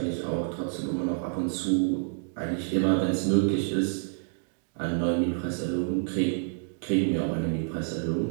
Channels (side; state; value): left; silent; digital silence